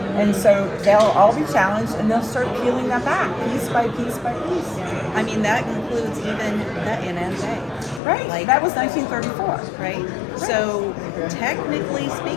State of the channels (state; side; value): drops out; right; at 8.0 s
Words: And so they'll all be challenged, and they'll start peeling that back piece by piece by piece. I mean, that includes even the NSA. Right. Like, that was 1934. Right? So, technically